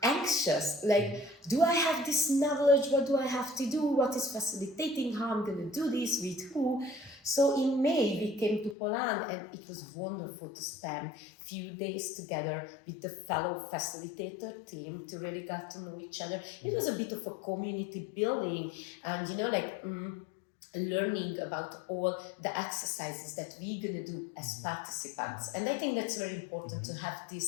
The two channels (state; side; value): drops out; right; at 8.8 s